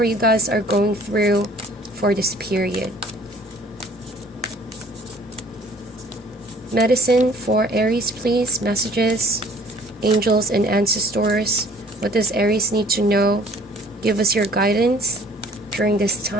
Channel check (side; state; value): both; normal; correlation 0.54